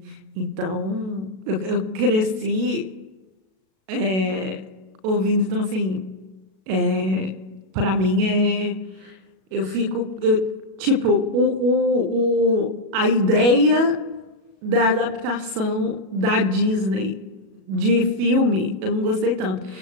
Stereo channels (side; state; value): left; late; 37 ms